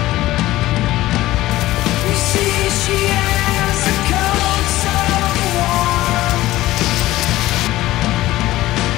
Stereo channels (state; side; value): quieter; right; 16.5 dB